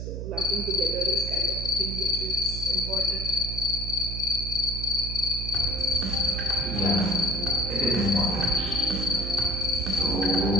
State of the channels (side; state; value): right; noise; hum, 5 dB below the sound